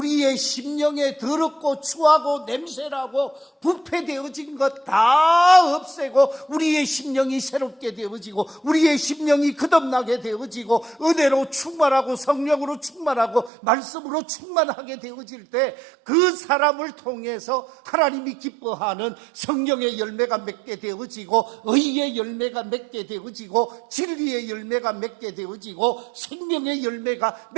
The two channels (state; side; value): drops out; left; at 13.5 s